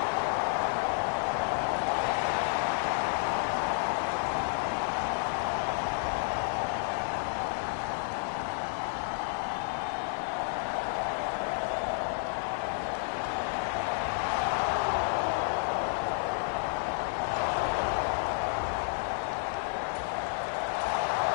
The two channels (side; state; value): right; silent; 57 dB below the other